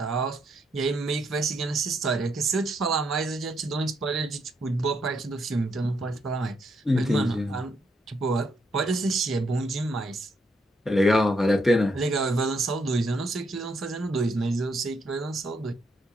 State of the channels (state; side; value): normal; both; correlation 0.76